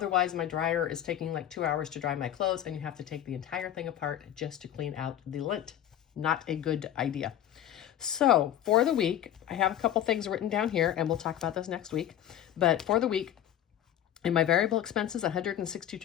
my dryer is taking like 2 hours to dry my clothes, and you have to take the entire thing apart just to clean out the lint. Not a good idea. So for the week, I have a couple things written down here, and we'll talk about this next week. But for the week, in my variable expenses,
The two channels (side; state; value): right; quieter; 11.4 dB